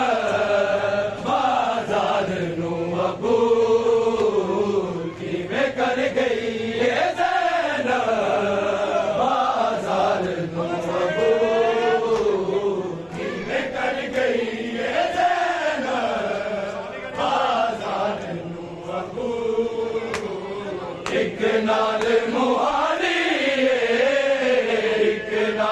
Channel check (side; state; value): both; identical; correlation 1.00